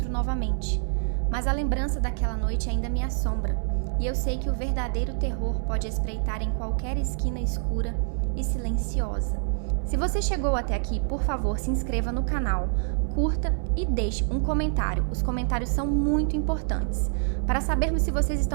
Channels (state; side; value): silent; left; digital silence